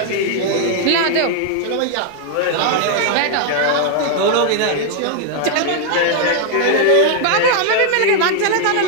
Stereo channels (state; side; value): different; both; correlation 0.00